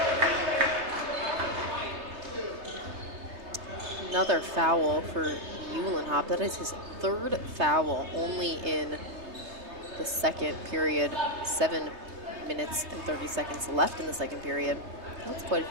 Another foul for Eulenhop. That is his 3rd foul, only in the second period. 7 minutes and 30 seconds left in the second period. That's quite a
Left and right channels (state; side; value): late; left; 3.3 ms